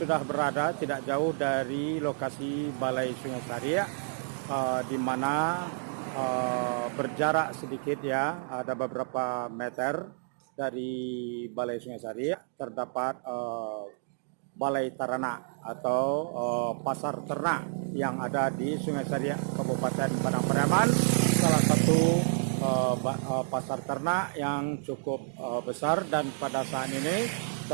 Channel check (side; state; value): left; silent; digital silence